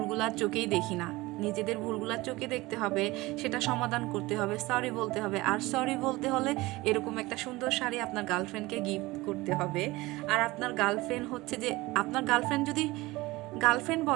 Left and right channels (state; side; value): quieter; left; 20.6 dB